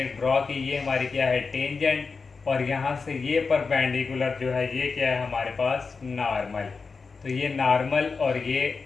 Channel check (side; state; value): right; quieter; 4.7 dB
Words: ड्रॉ की, ये हमारी क्या है, टेंजेंट। और यहाँ से ये परपेंडिकुलर जो है ये क्या है हमारे पास, नॉर्मल। तो ये नॉर्मल और ये